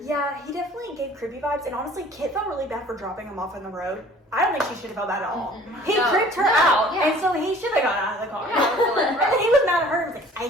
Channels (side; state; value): both; normal; correlation 0.50